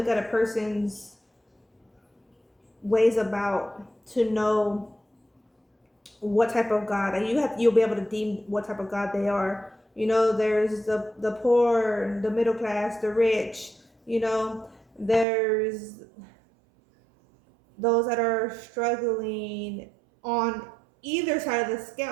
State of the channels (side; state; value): left; drops out; at 15.2 s